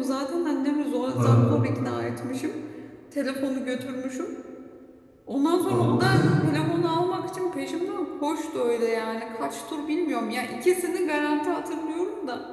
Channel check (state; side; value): identical; both; correlation 1.00